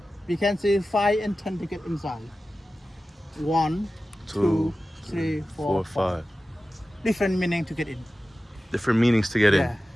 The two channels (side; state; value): both; normal; correlation 0.95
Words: we can see 5 and 10 to get inside. 1, 2, 3, 4, 5. Different meaning to get in. Different meanings to get in.